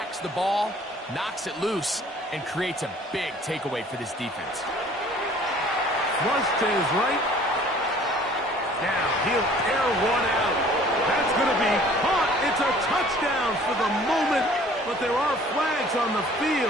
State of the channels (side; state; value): both; normal; correlation 0.52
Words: the ball, knocks it loose, and creates a big takeaway for this defense. Flush to his right. Now he'll air one out. That's going to be caught. It's a touchdown for the moment, but there are flags on the